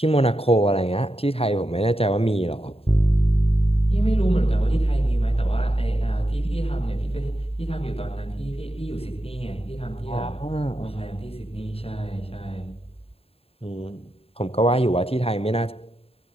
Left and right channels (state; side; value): late; right; 0.28 ms